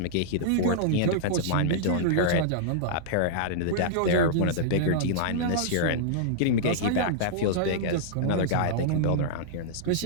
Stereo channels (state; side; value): different; both; correlation -0.02